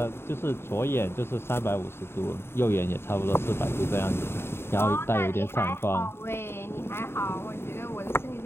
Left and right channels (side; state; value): right; late; 0.12 ms